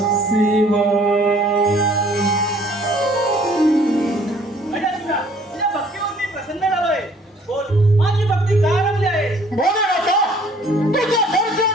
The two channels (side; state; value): both; normal; correlation 0.57